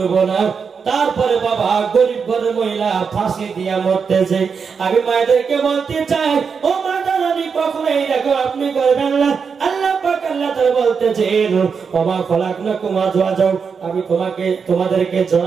না। তারপরে বাবা গরিব ঘরের মহিলা ফাঁসি দিয়া মরতেছে। আমি মায়েদেরকে বলতে চাই, ও মাতা রানী কখনো এইরকম আপনি করবেন না। আল্লাহ পাক আল্লাহ তাআলা বলতেছেন ওমা খলাকনাকুম আজওয়াজাও, আমি তোমাদেরকে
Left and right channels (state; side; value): quieter; left; 5.9 dB